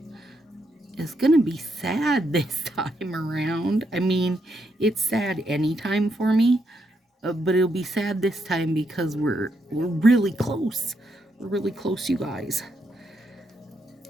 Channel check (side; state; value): both; normal; correlation 0.79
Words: is gonna be sad this time around. I mean, it's sad anytime for me, but it'll be sad this time because we're really close. We're really close, you guys.